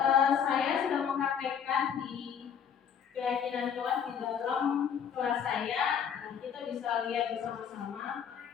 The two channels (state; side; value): quieter; right; 7.8 dB